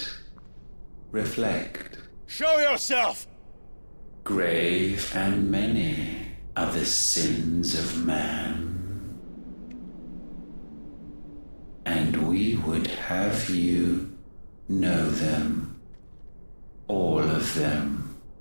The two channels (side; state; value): both; inverted; correlation -1.00